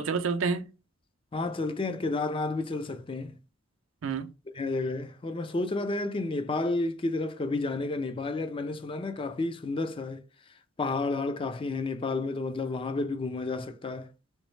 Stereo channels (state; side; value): normal; both; correlation 0.58